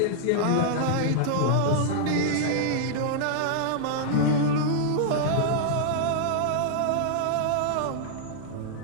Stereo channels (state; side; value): different; both; correlation -0.01